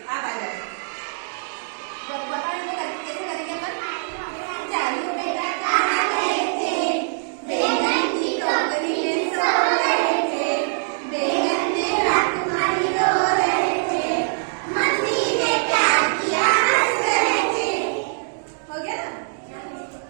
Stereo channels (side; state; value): left; silent; digital silence